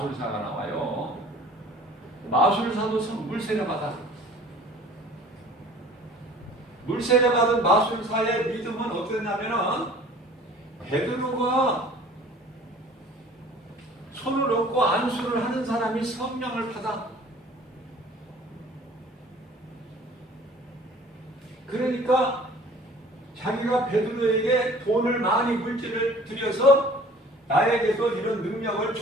나와요. 마술사도 물세례 받아. 물세례 받은 마술사의 믿음은 어땠냐면은 베드로가 손을 얹고 안수를 하는 사람이 성령을 받아. 그러니까 자기가 베드로에게 돈을 많이 물질을 들여서 나에게도 이런 능력을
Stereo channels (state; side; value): normal; both; correlation 0.49